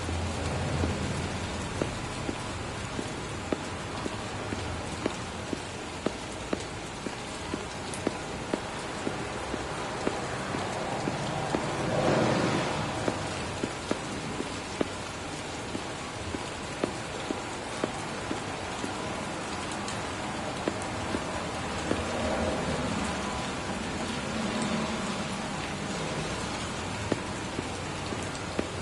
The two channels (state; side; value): identical; both; correlation 1.00